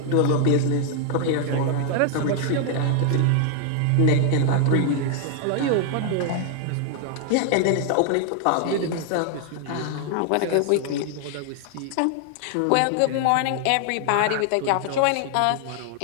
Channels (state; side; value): different; both; correlation 0.00